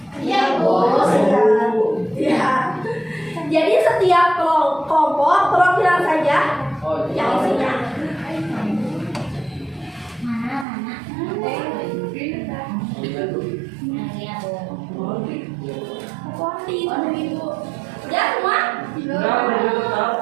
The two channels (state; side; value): drops out; left; at 10.7 s